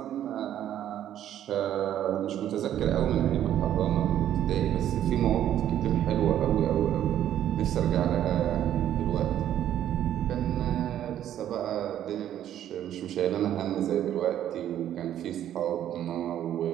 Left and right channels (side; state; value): left; quieter; 11.2 dB